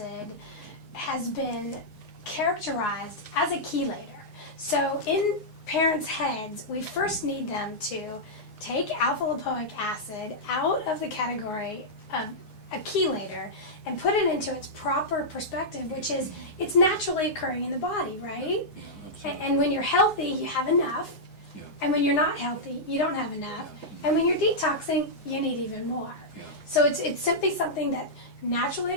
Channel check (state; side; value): late; right; 9.6 ms